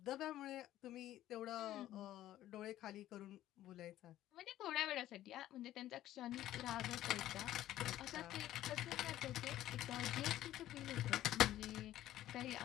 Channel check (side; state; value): right; quieter; 13.6 dB